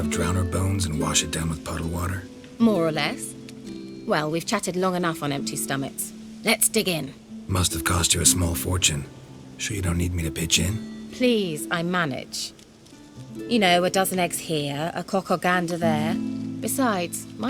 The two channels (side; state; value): both; identical; correlation 1.00